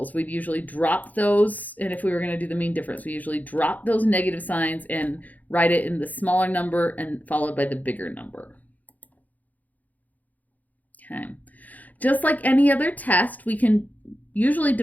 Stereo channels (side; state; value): right; late; 0.079 ms